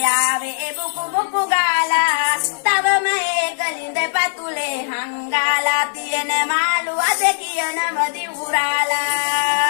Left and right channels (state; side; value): silent; right; digital silence